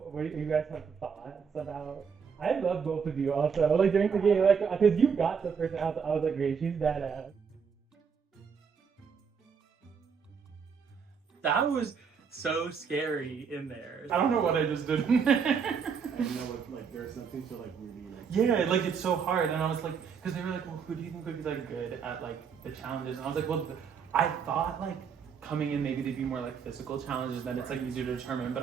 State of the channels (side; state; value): left; quieter; 6.4 dB